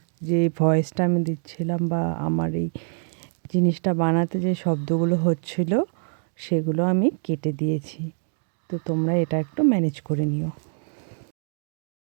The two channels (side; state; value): left; silent; digital silence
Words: যে ভয়েসটা আমি দিচ্ছিলাম বা আমার এই জিনিসটা বানাতে যে শব্দগুলো হচ্ছিল সেগুলো আমি কেটে দিয়েছি। তো তোমরা এটা একটু ম্যানেজ করে নিও।